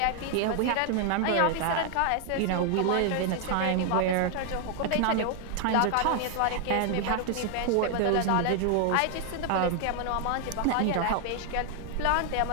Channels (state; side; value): different; both; correlation 0.00